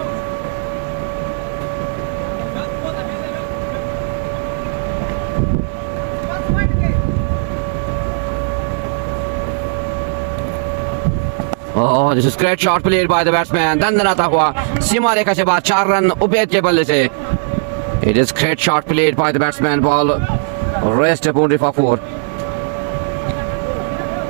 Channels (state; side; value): silent; left; digital silence